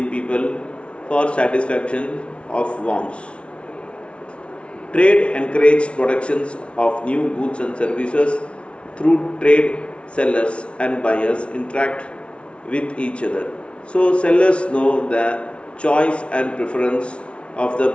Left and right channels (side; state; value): right; late; 0.060 ms